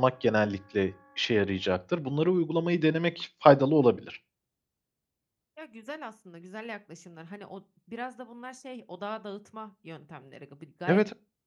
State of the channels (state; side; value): identical; both; correlation 1.00